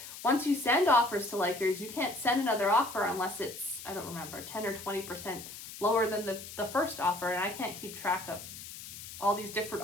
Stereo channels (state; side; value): noise; left; hiss, 12 dB below the sound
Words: once you send offers to likers, you can't send another offer unless it's, I don't remember, 10 or 20% lower than the first offer. And I can't keep track of all these different